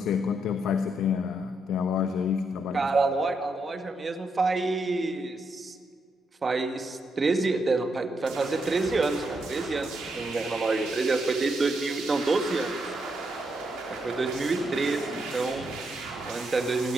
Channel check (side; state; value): both; normal; correlation 0.80